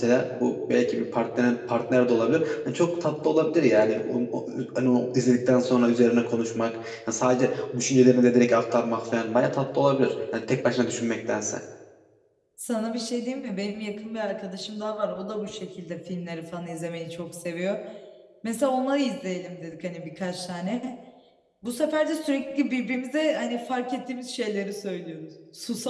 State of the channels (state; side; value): identical; both; correlation 1.00